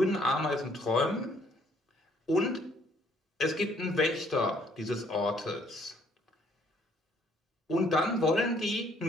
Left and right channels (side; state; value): both; normal; correlation 0.64